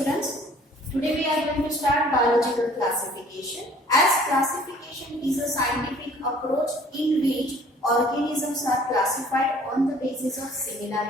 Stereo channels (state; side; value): normal; both; correlation 0.54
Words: today we are going to start biological classification. As classification is a scientific approach in which organisms are classified on the basis of